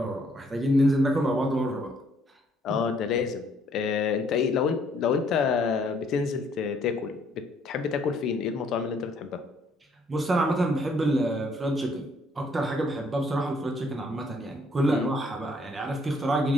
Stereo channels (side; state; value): both; normal; correlation 0.66